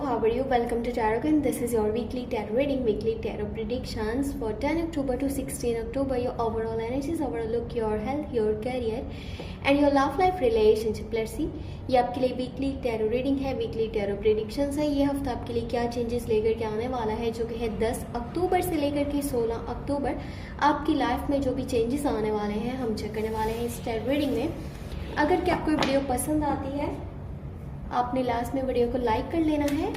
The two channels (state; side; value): identical; both; correlation 1.00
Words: are you? Welcome to Tarot. This is your weekly tarot reading, weekly tarot predictions for 10 October to 16 October. Your overall energies, overall look, your health, your career and your love life relationship. Let's see. ये आपके लिए weekly tarot reading है, weekly tarot predictions है। ये हफ्ता आपके लिए क्या चेंजेस लेकर के आने वाला है, जो कि है 10 अक्टूबर से लेकर के 16 अक्टूबर। आपकी लाइफ में जो भी चेंजेस आने वाले हैं हम चेक करने वाले हैं इस टैरो रीडिंग में। अगर क्या आपको वीडियो पसंद आती है, आपने लास्ट में वीडियो को लाइक कर लेना है।